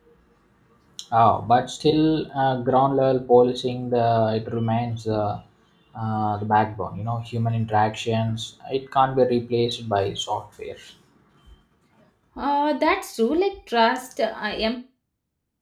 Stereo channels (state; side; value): identical; both; correlation 1.00